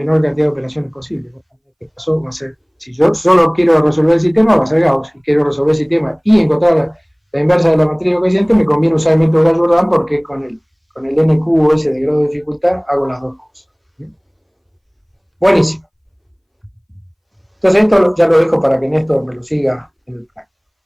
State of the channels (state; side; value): identical; both; correlation 1.00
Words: cantidad de operaciones posible. En este caso va a ser, si yo solo quiero resolver el sistema, va a ser Gauss. Si quiero resolver el sistema y encontrar la inversa de la matriz de coeficientes, me conviene usar el método de Gauss-Jordan porque con con el n cubo ese de grado de dificultad, hago las dos cosas. Buenísimo. Entonces esto ya lo dejo para que Néstor me lo siga en el plan.